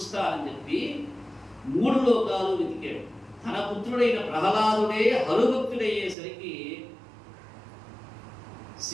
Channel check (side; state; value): left; drops out; at 6.2 s